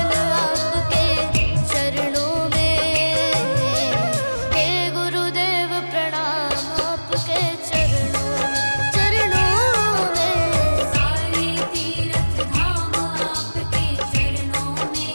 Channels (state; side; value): inverted; both; correlation -1.00